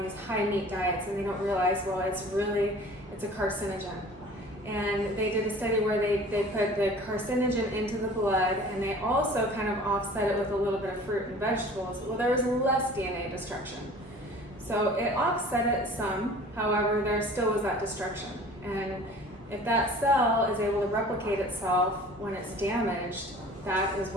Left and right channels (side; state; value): both; normal; correlation 0.45